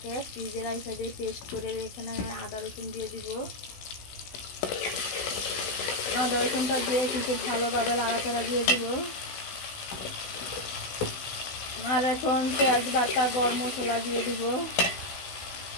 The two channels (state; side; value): late; right; 16 ms